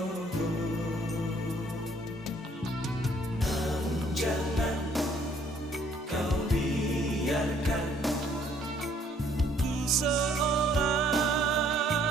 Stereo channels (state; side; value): normal; both; correlation 0.62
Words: namun jangan kau biarkan ku seorang